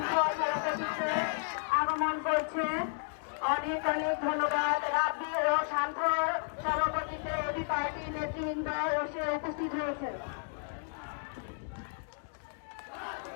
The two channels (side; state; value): right; silent; digital silence